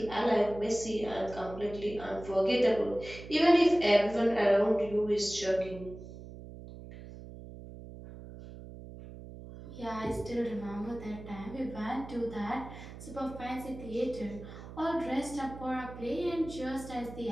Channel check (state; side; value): noise; right; hum, 14 dB below the sound